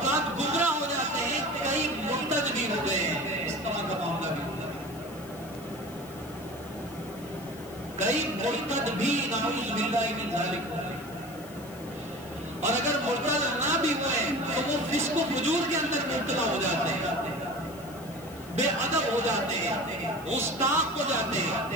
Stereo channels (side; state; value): left; noise; hiss, 20 dB below the sound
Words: گمراہ ہو جاتے ہیں، کئی مرتد بھی ہو گئے ہیں، اس طرح کا معاملہ بھی ہوتا ہے، کئی مرتد بھی نعوذ باللہ من ذالک ہو گئے۔ اور اگر مرتد نہ بھی ہوئے تو وہ فسق و فجور کے اندر مبتلا ہو جاتے ہیں، بے ادب ہو جاتے ہیں، گستاخ ہو جاتے ہیں۔